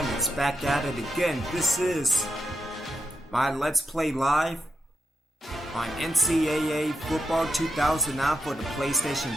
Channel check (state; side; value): normal; both; correlation 0.85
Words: is back at it again. This is my Let's Play Live on NCAA Football 2009 for the